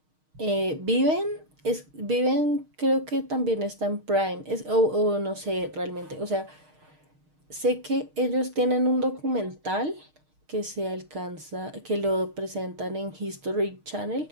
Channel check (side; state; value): left; late; 6.5 ms